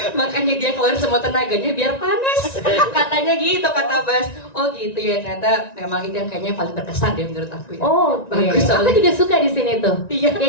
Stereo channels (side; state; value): right; late; 1.9 ms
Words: Makanya dia keluar semua tenaganya biar panas. Katanya gitu kata Bas. Oh gitu ya ternyata memang itu yang kayaknya paling berkesan deh menurut aku ya. Oh, bagus aku soalnya. juga suka di sini tuh. Iya.